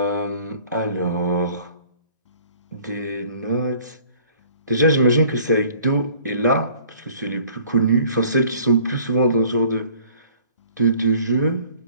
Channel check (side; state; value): both; inverted; correlation -0.54